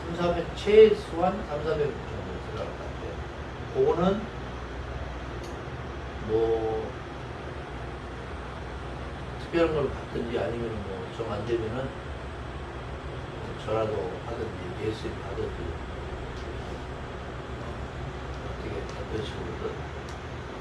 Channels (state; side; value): identical; both; correlation 1.00